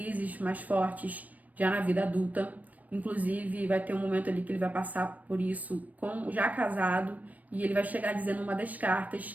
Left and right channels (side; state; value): left; late; 0.074 ms